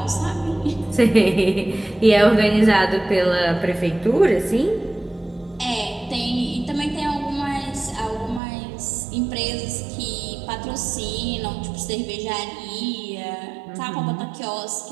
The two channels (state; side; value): drops out; left; at 8.4 s